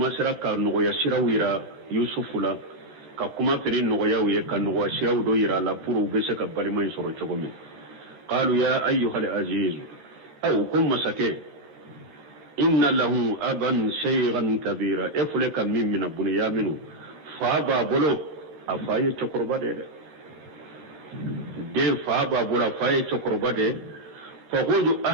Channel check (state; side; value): late; left; 13 ms